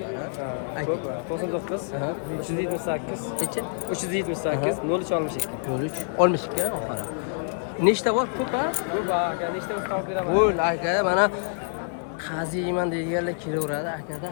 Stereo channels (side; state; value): right; silent; digital silence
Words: ha? Ayting. 99 Aha. 378 Kechi? 378 03 olmush ekan. 03 olmushga oxiri. Nechta bor? Ko'p, ha? Ko'p aka, nechta o'z qolib beraman. Bo'l aka, mana qaziyman deganlar kelaveradi akada